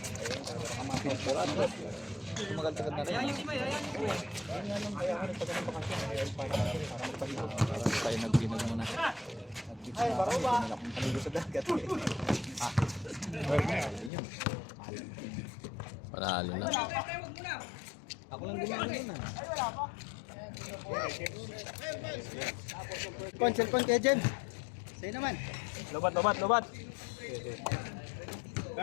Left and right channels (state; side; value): drops out; right; at 14.1 s